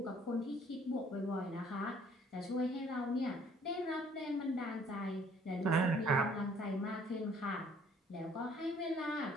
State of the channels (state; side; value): normal; both; correlation 0.59